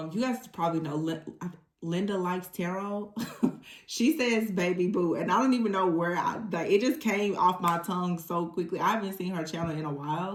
guys probably know Linda Likes Tarot. She says baby boo, and I don't even know where it just came off my tongue so quickly. I haven't seen her channel in a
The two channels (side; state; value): both; identical; correlation 1.00